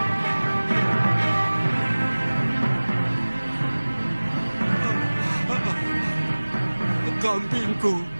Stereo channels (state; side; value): inverted; both; correlation -1.00